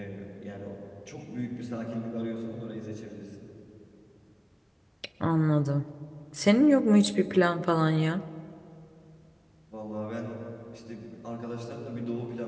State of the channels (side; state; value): both; identical; correlation 1.00